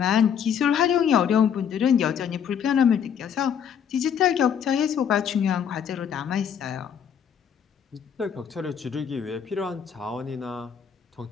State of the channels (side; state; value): right; quieter; 8.0 dB